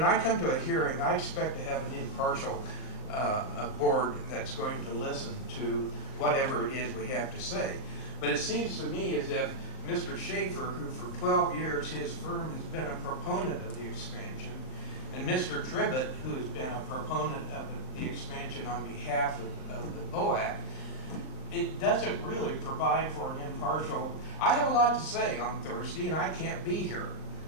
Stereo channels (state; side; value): late; right; 39 ms